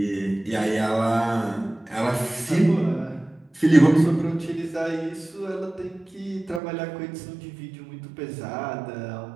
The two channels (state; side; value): drops out; left; at 6.6 s